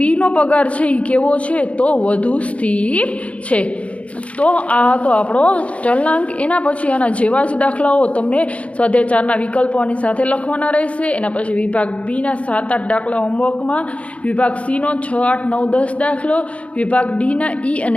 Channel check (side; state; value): right; late; 0.064 ms